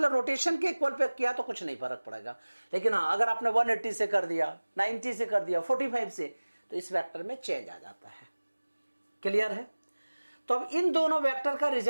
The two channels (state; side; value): inverted; both; correlation -1.00